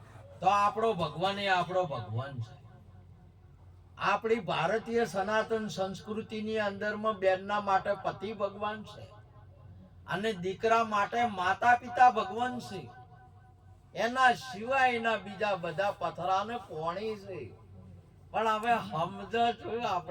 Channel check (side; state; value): both; identical; correlation 1.00